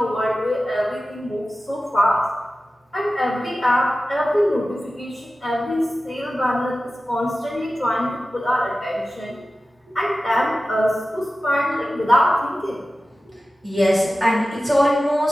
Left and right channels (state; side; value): normal; both; correlation 0.95